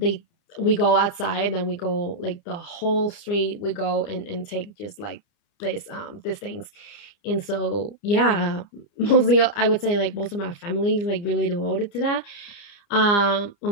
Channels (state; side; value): late; right; 30 ms